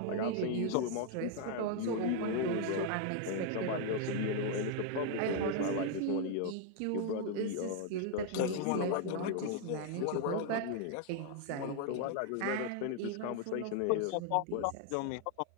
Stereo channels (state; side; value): different; both; correlation 0.00